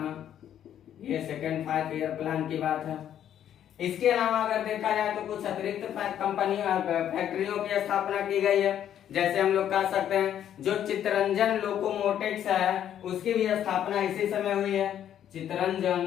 ये सेकेंड 5 ईयर प्लान की बात है। इसके अलावा अगर देखा जाए तो कुछ अतिरिक्त फैक्ट्रियों की स्थापना की गई है। जैसे हम लोग कह सकते हैं जो चित्तरंजन लोकोमोटिव्स है उसकी भी स्थापना इसी समय हुई है।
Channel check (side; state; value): right; quieter; 10.3 dB